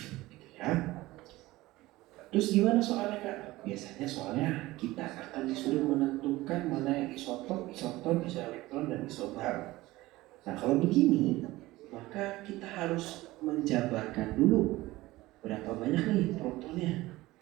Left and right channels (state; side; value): quieter; left; 18.5 dB